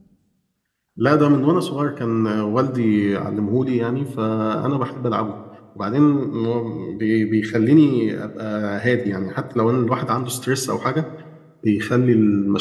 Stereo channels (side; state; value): both; identical; correlation 1.00